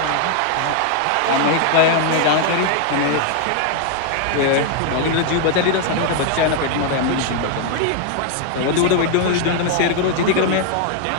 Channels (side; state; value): both; different; correlation 0.00